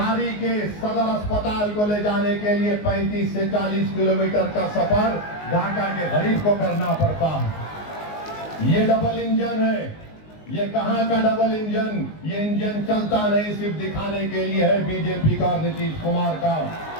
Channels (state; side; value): late; right; 19 ms